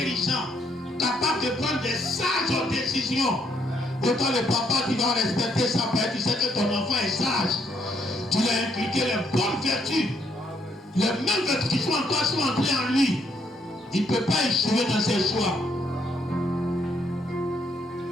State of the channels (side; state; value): both; normal; correlation 0.72